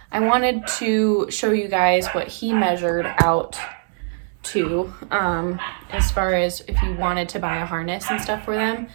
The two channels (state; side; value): silent; left; digital silence